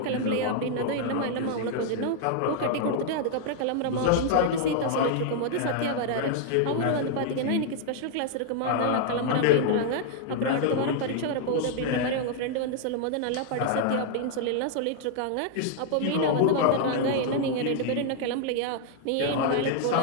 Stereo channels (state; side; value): different; both; correlation 0.00